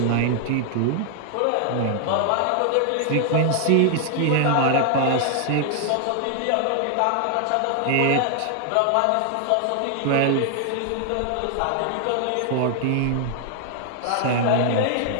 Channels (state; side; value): different; both; correlation 0.00